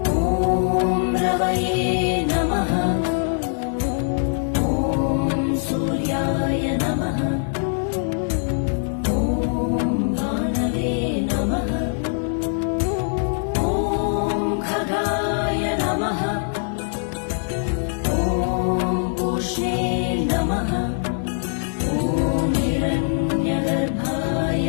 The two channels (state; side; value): silent; right; 62 dB below the other